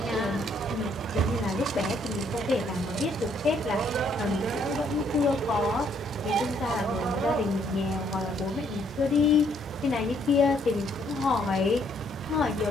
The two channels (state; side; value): normal; both; correlation 0.69